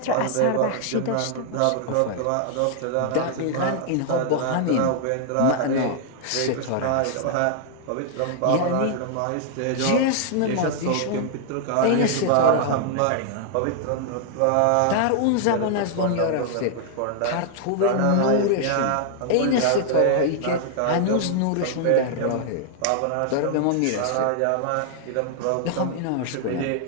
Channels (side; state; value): both; different; correlation 0.00